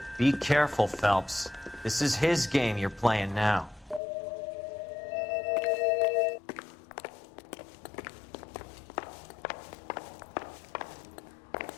Be careful, Phelps. This is his game you're playing now.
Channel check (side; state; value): right; drops out; at 4.0 s